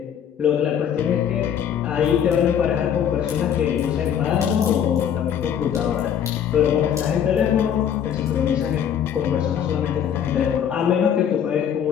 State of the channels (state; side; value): quieter; right; 8.9 dB